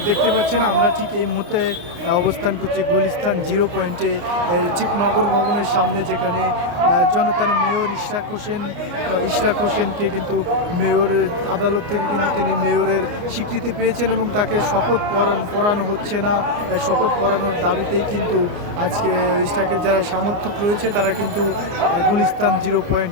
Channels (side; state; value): left; late; 29 ms